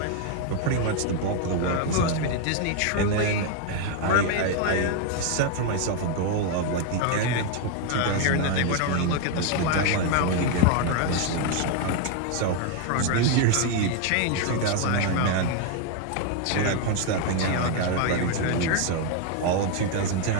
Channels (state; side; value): different; both; correlation 0.01